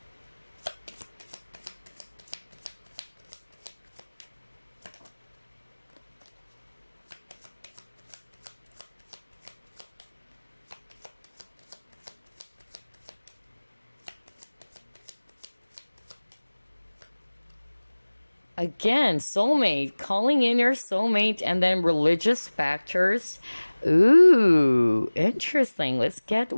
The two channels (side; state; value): both; inverted; correlation -1.00